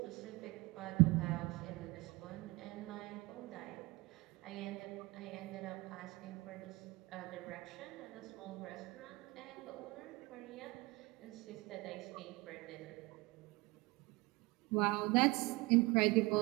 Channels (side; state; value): left; quieter; 23.4 dB